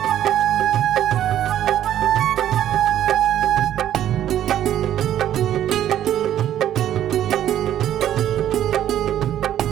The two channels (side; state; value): left; quieter; 11.5 dB